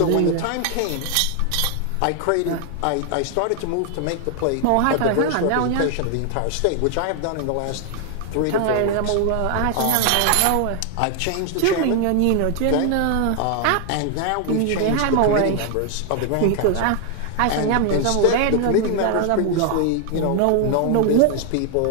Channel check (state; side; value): different; both; correlation 0.00